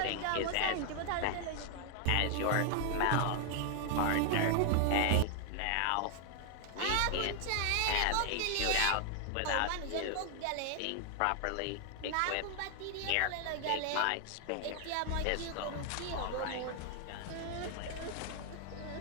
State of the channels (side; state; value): both; different; correlation 0.00